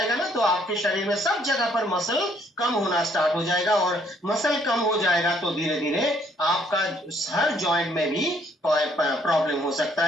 ना, तो आपके शरीर में सब जगह पर मसल कम होना स्टार्ट हो जाएगा, और मसल कम हो जाएगा तो धीरे धीरे आपका हर जॉइंट में भी प्रॉब्लम हो सकता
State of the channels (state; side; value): normal; both; correlation 0.66